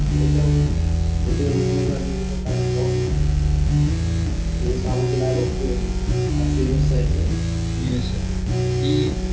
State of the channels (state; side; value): identical; both; correlation 1.00